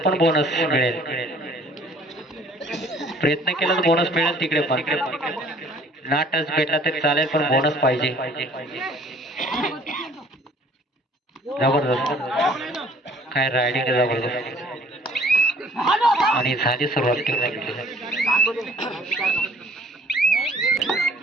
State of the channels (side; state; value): both; normal; correlation 0.55